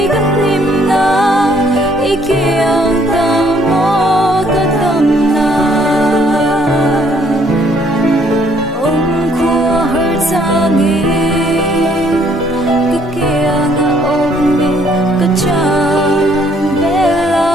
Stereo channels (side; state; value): both; normal; correlation 0.65